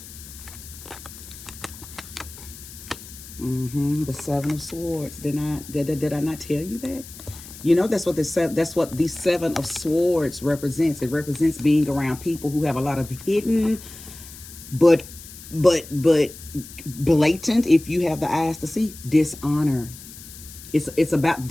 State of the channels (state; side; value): noise; left; hiss, 16 dB below the sound